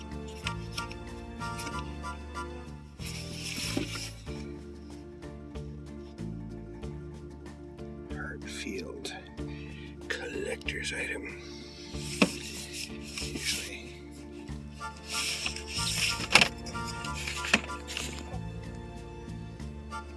Hartfield collector's item. Usually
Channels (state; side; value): identical; both; correlation 1.00